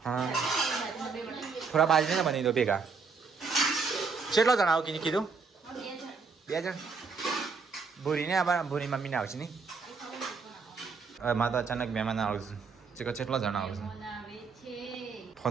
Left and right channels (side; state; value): left; quieter; 4.9 dB